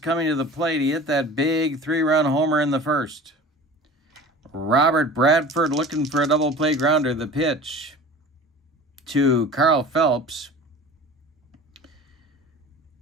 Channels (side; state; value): both; normal; correlation 0.40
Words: to the plate. He hit that big 3-run homer in the first. Robert Bradford looking for a double play grounder. The pitch to Carl Phelps